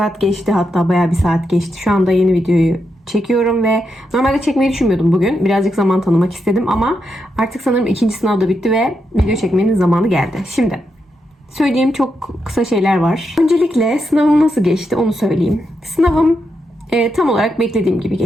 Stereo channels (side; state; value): both; normal; correlation 0.84